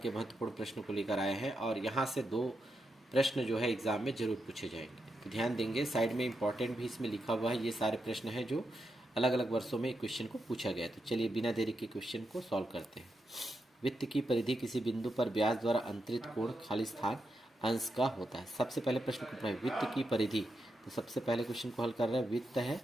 के महत्वपूर्ण प्रश्न को लेकर आए हैं और यहाँ से 2 प्रश्न जो है एग्जाम में जरूर पूछे जाएंगे, तो ध्यान देंगे। साइड में इंपॉर्टेंट भी इसमें लिखा हुआ है। ये सारे प्रश्न हैं जो अलग अलग वर्षों में क्वेश्चन को पूछा गया है। तो चलिए बिना देरी के क्वेश्चन को सॉल्व करते हैं। वित्त की परिधि किसी बिंदु पर ब्याज द्वारा अंतरित कोण खालिस्तान अंश का होता है। सबसे पहले प्रश्न को पढ़ें, वित्त की परिधि। तो सबसे पहले क्वेश्चन को हल कर रहे हैं। वित्त है,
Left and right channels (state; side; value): normal; both; correlation 0.85